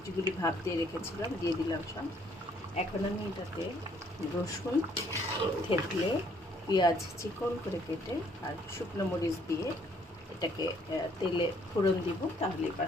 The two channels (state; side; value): normal; both; correlation 0.64